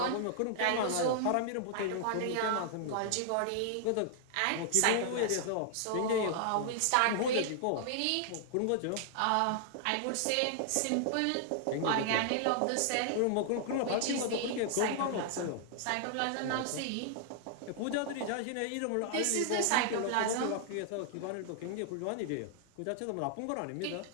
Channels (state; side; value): different; both; correlation -0.01